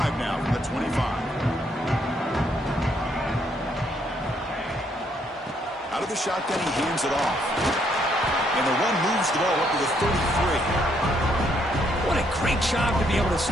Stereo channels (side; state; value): both; normal; correlation 0.71